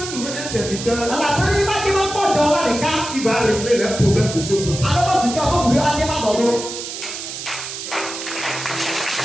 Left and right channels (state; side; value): noise; right; hiss, 8 dB below the sound